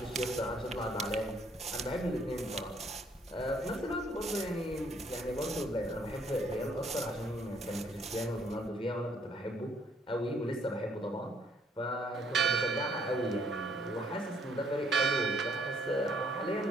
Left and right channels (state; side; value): normal; both; correlation 0.65